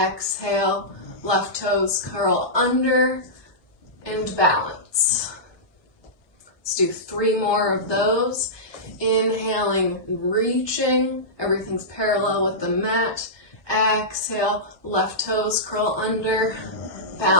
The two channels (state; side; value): late; right; 1.2 ms